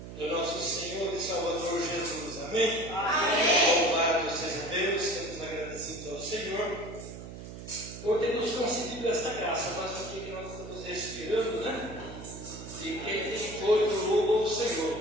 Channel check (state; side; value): noise; right; hum, 12 dB below the sound